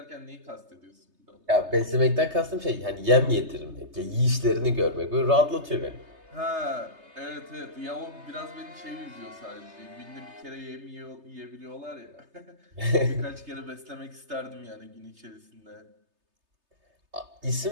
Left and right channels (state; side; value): late; left; 3.3 ms